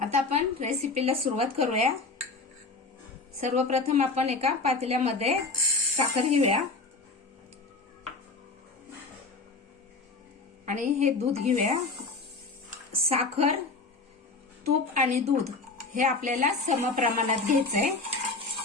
आता आपण रेसिपीला सुरुवात करूया. सर्वप्रथम आपण एका पातेल्यामध्ये साखर घेऊया आणि हे दूध घेऊया. साखर, तूप आणि दूध हे आपल्याला समप्रमाणात घ्यायचंय.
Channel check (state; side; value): quieter; right; 3.7 dB